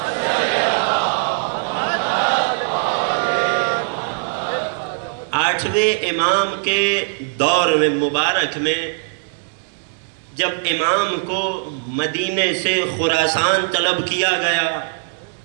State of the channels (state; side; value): silent; left; digital silence